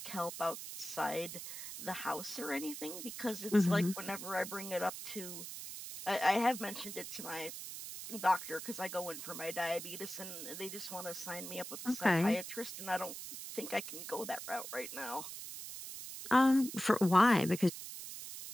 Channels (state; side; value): noise; right; hiss, 9 dB below the sound